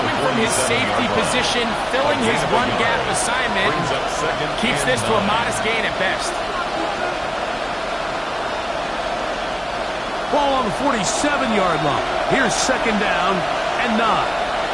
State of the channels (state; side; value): identical; both; correlation 1.00